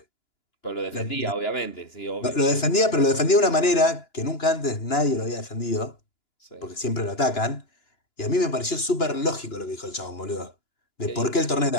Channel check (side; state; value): right; late; 2.9 ms